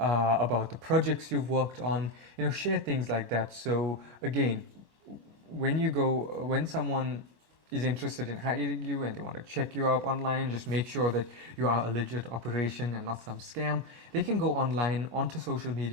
the projects you've worked on. Share things like that. So again, when someone is interested in hiring you and they want to check you out online, just make sure that you are a legit operation and not some scam. They can go online onto social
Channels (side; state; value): left; late; 24 ms